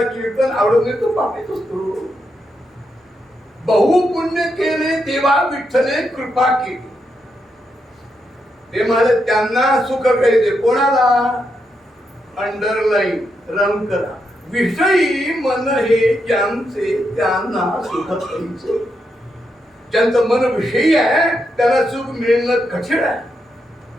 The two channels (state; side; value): normal; both; correlation 0.82